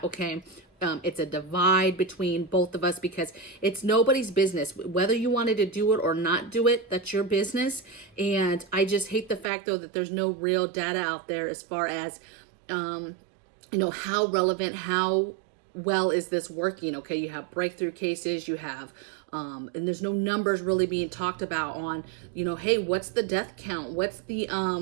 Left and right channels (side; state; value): left; drops out; at 9.5 s